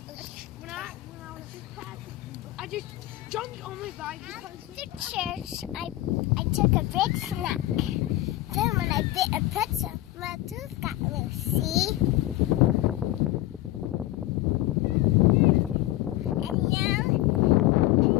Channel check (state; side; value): quieter; right; 16.1 dB